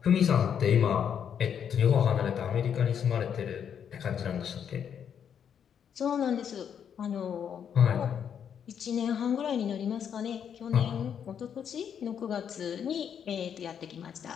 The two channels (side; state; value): right; quieter; 8.1 dB